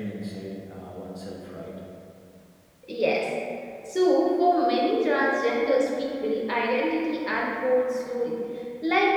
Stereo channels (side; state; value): both; identical; correlation 1.00